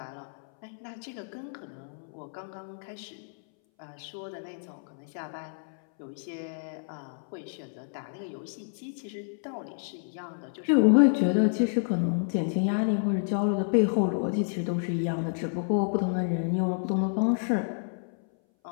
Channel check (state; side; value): silent; right; 58 dB below the other